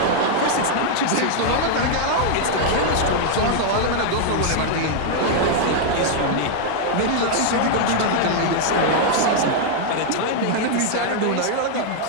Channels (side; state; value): both; different; correlation 0.00